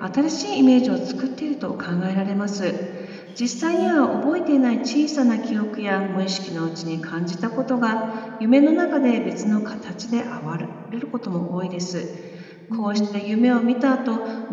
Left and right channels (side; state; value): both; identical; correlation 1.00